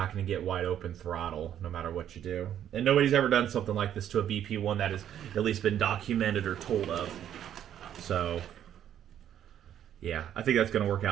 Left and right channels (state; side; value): quieter; left; 10.4 dB